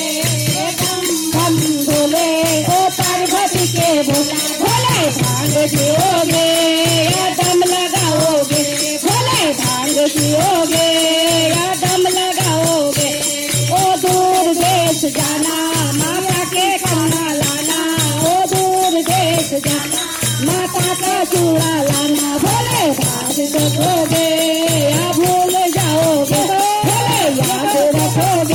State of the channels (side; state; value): both; identical; correlation 1.00